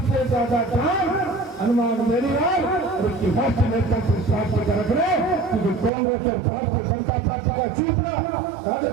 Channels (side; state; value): left; drops out; at 5.9 s